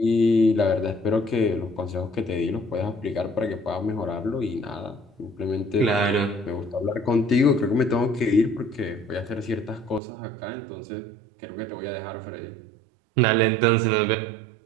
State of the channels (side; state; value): left; drops out; at 10.0 s